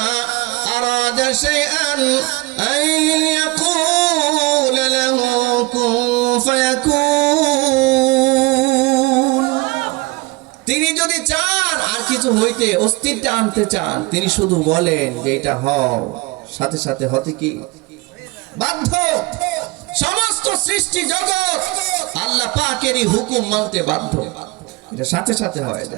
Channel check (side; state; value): left; quieter; 23.5 dB